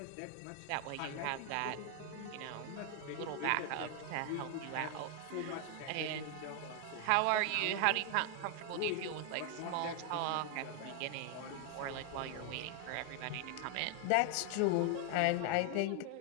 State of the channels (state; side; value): different; both; correlation 0.00